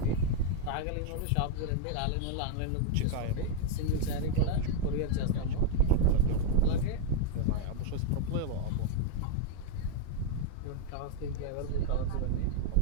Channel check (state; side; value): different; both; correlation 0.00